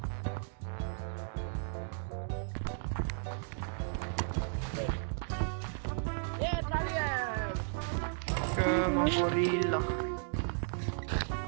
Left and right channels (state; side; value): silent; left; digital silence